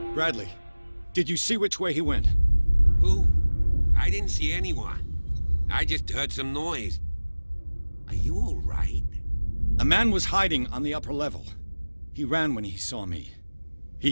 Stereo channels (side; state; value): both; inverted; correlation -1.00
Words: Bradley, did you see which way he went? Who? I didn't see anyone. I just heard some noise. Are you all right? A man was hiding on the upper level. He ran when he saw me.